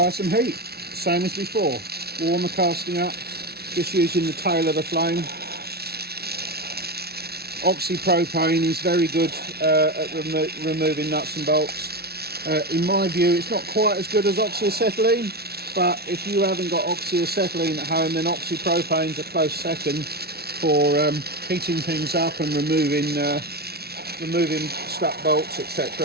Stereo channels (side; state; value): left; late; 0.46 ms